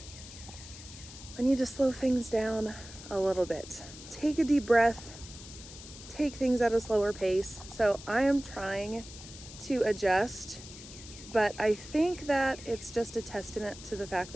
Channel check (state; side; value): noise; left; hiss, 15 dB below the sound